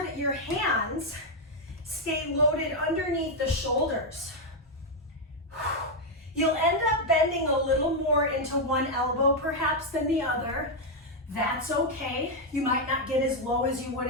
that your hands stay loaded underneath the shoulders. You'll end up bending a little more into one elbow perhaps than the other. That's okay. You might not get as low as you would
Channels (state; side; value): normal; both; correlation 0.01